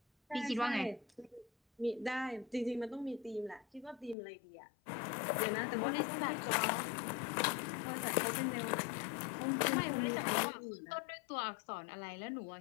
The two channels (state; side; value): drops out; right; at 4.2 s